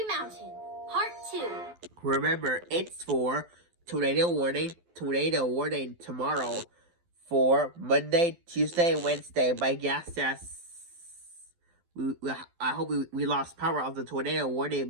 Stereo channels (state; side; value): late; left; 12 ms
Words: Mountain, Part 2. Remember, it's for tornado warning tomorrow for Monday, Tuesday, and Wednesday. My guess is I hope we lost power of the tornado warning.